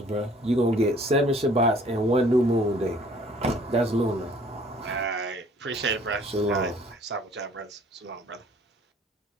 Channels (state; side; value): normal; both; correlation 0.56